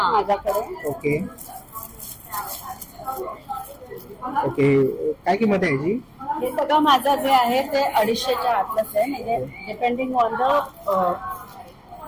माझ्याकडे. ओके, ओके, काय किंमत आहे याची? हे सगळं माझं जे आहे ते 250च्या आतलंच आहे. म्हणजे डिपेंडिंग ऑन द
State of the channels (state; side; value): identical; both; correlation 1.00